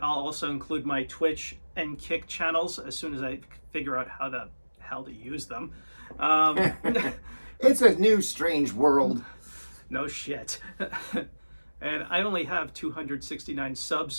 I'll also include my Twitch and Kick channels as soon as I figure out how the hell to use them. It's a new, strange world. No shit. And I only have 269 subs,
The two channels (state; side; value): inverted; both; correlation -1.00